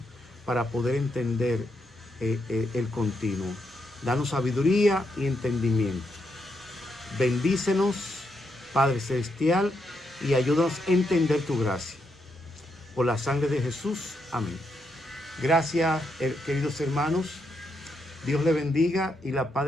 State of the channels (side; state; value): both; normal; correlation 0.81